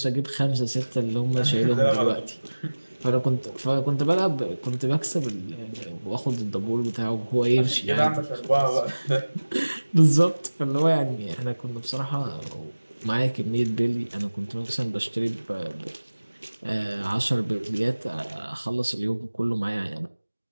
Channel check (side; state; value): both; inverted; correlation -1.00